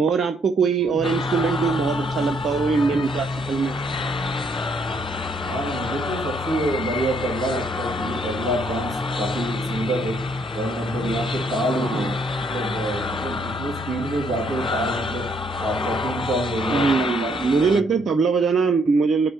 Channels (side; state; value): both; normal; correlation 0.69